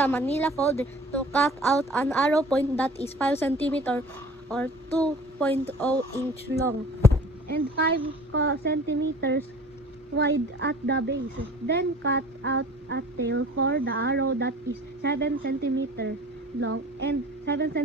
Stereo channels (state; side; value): normal; both; correlation 0.45